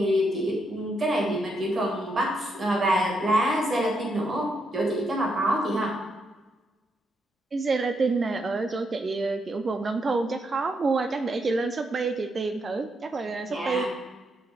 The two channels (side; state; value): both; normal; correlation 0.79